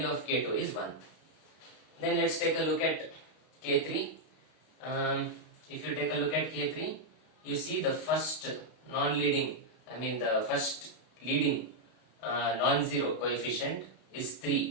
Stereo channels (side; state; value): right; late; 32 ms